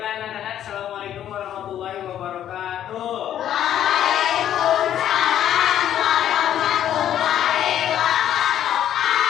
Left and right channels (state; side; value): quieter; right; 10.9 dB